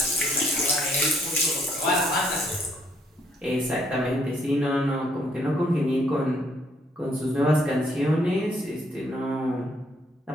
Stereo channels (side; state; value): both; normal; correlation 0.69